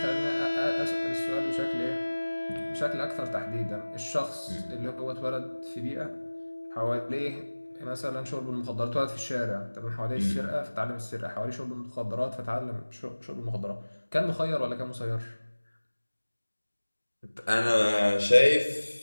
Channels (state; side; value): inverted; both; correlation -1.00